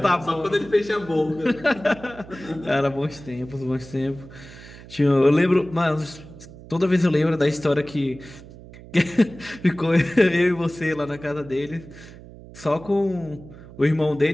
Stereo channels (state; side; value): noise; right; hum, 18 dB below the sound